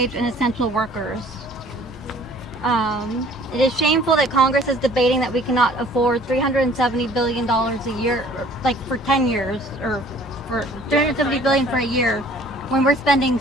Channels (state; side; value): normal; both; correlation 0.53